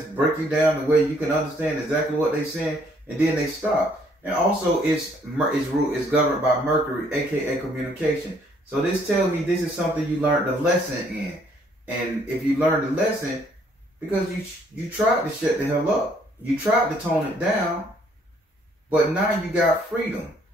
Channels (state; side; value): normal; both; correlation 0.65